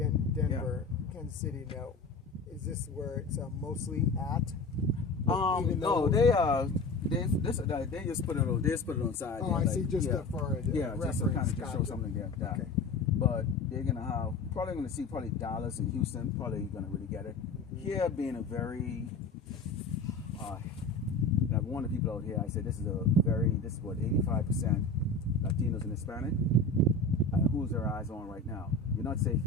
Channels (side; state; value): right; quieter; 3.5 dB